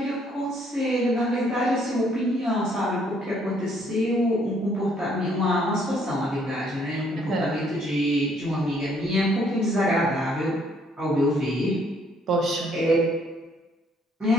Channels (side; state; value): both; normal; correlation 0.66